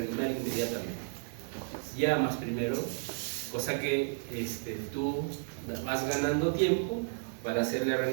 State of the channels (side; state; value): left; silent; digital silence